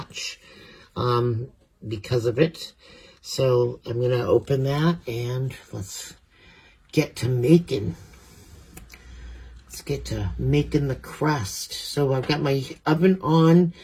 because of it. So I'm going to open that and let's get to making. Let's get to making the crust. So I've got my oven on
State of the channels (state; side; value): identical; both; correlation 1.00